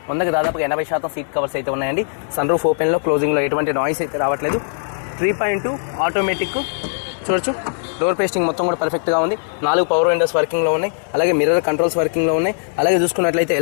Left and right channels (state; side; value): silent; right; 66 dB below the other